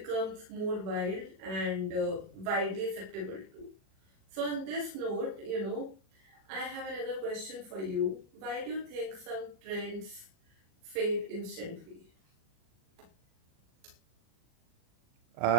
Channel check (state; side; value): late; left; 37 ms